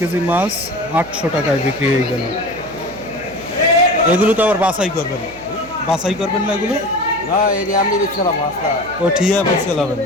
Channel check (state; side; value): noise; right; hum, 20 dB below the sound